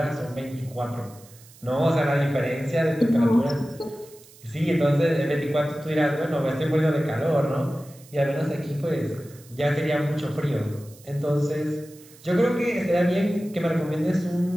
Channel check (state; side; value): noise; right; hiss, 23 dB below the sound